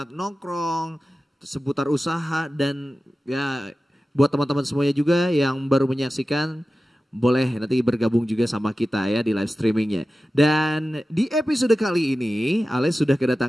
nongkrong, seputar usaha dan ya buat teman-teman semuanya juga yang baru menyaksikan boleh nanti bergabung juga sama kita ya di live streamingnya. Dan di episode kali ini Ale sudah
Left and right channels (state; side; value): normal; both; correlation 0.94